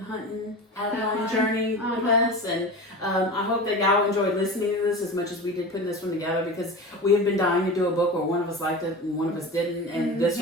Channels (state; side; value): normal; both; correlation 0.30